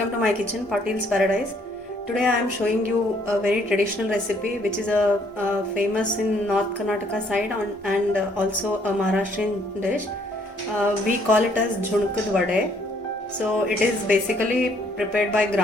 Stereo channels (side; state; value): both; normal; correlation 0.65